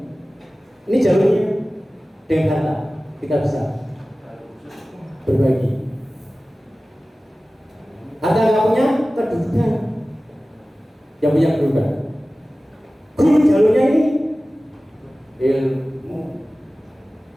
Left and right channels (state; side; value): normal; both; correlation 0.97